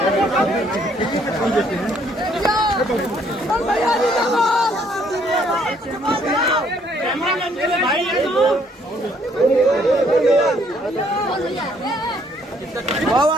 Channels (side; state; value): both; normal; correlation 0.65